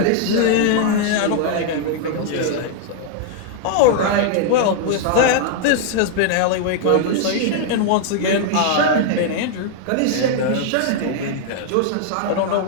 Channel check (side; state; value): both; different; correlation 0.00